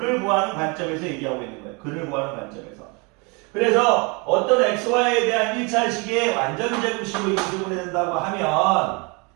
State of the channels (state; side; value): quieter; left; 30.4 dB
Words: 관점에서 얘기하고 있는 거예요. 근을 구하는 관점에서. 그래서 어떤 xy에 대한 1차식의 완전 제곱식으로 인수분해 된다고 하면